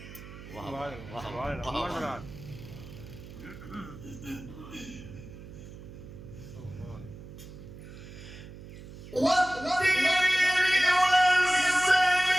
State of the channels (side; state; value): right; noise; hum, 15 dB below the sound